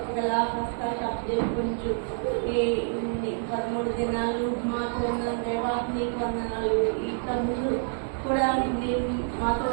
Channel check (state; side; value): silent; left; digital silence